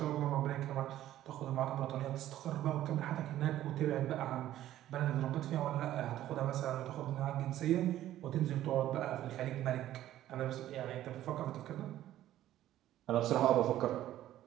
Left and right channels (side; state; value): left; quieter; 13.2 dB